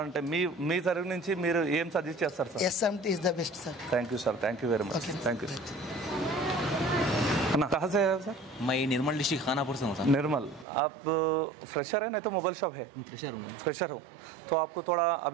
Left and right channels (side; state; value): left; drops out; at 10.7 s